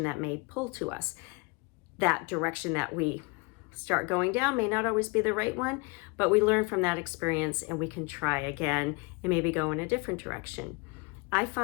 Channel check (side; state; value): right; quieter; 29.3 dB